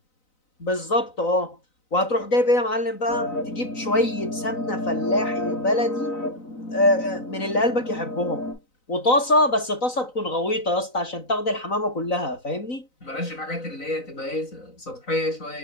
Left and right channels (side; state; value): right; late; 4.0 ms